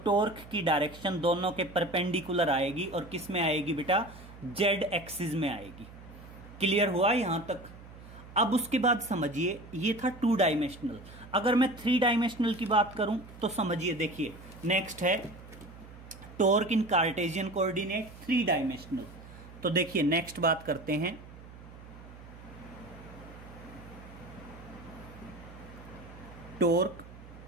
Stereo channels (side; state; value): right; noise; hum, 17 dB below the sound